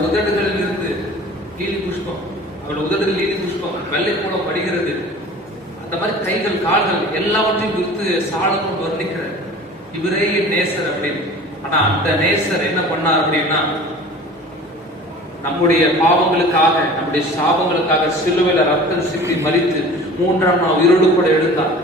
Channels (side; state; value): both; normal; correlation 0.42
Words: உதடுகளில் இருந்து லீலி புஷ்பம், அவருடைய உதடுகள் லீலி புஷ்பம் வெள்ளை போல படுகிறது. அந்த மாதிரி கைகள் கால்கள் எல்லாவற்றையும் குறித்து சாலமோன் வர்ணிக்கிறார், இவரே என் நேசர் அப்படின்னு. ஆனா அந்த நேசர் என்ன பண்ணார் அப்படின்னா, நம்முடைய பாவங்களுக்காக, நம்முடைய சாபங்களுக்காக சிலுவையில ரத்தம் சிந்தி மரித்து 3ஆம் நாள் உயிரோடு கூட எழுந்தார்.